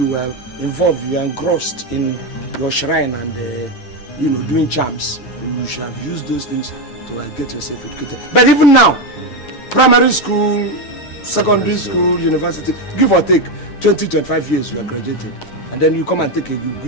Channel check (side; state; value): right; late; 9.0 ms